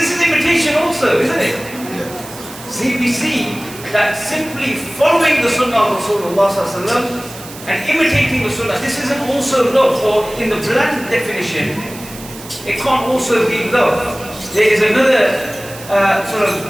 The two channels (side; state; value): right; noise; hiss, 16 dB below the sound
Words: is imitation also, isn't it? See, we see that simply following the sunnah of Rasulullah and imitating the sunnah, this isn't also love, or in the bland definition, it can't also be love. There is another sort